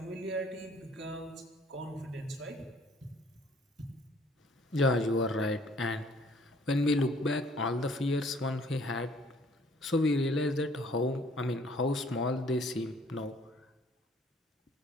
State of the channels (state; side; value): normal; both; correlation 0.58